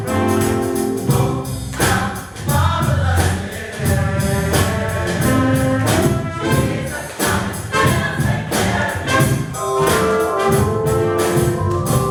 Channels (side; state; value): both; identical; correlation 1.00